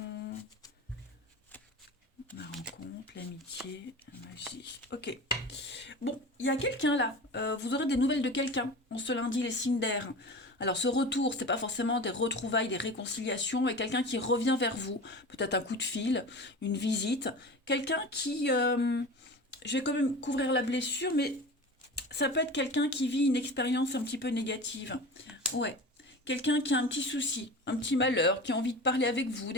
La rencontre, l'amitié, la magie. Ok. Bon, il y a quelqu'un là. Vous aurez des nouvelles de quelqu'un en ce lundi, les signes d'air. Alors, ce retour, c'est pas forcément des retrouvailles, des réconciliations, mais quelqu'un qui revient vers vous. Peut-être un coup de fil, une visite. Quelqu'un qui. Je vais quand même couvrir la blessure, mais ça peut être quelqu'un qui vit une expérience un petit peu négative. Ouais. Quelqu'un qui a un petit souci, un petit malheur, qui a envie de parler avec vous,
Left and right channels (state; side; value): normal; both; correlation 0.33